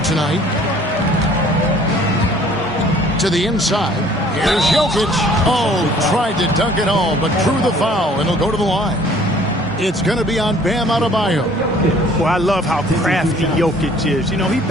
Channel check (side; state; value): both; normal; correlation 0.55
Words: tonight. To the inside. Here's Jokic. Oh, tried to dunk it home, but drew the foul, and he'll go to the line. It's going to be on Bam Adebayo. Well, I love how crafty Jokic is. You know, he